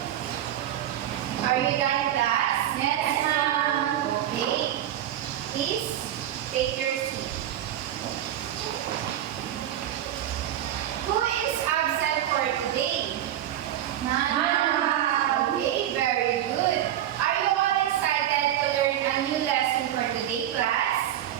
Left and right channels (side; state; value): left; quieter; 11.8 dB